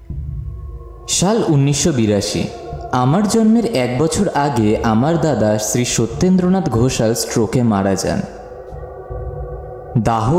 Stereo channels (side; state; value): both; identical; correlation 1.00